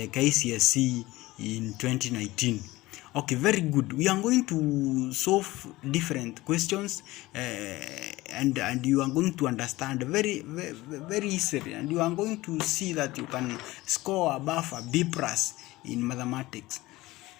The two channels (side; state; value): right; quieter; 18.9 dB